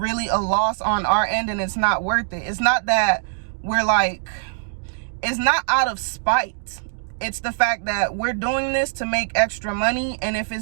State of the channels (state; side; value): silent; left; digital silence